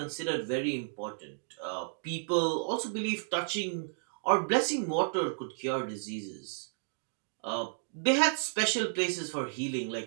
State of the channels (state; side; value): silent; left; digital silence